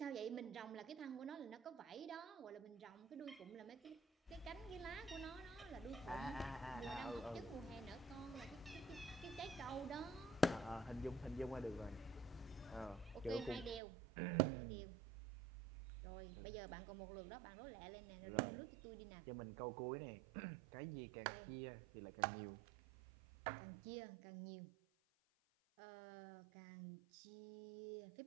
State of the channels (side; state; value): left; drops out; at 13.8 s